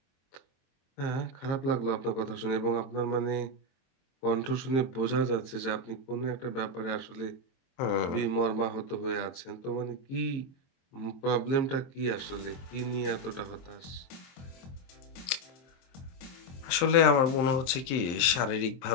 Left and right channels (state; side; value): late; right; 23 ms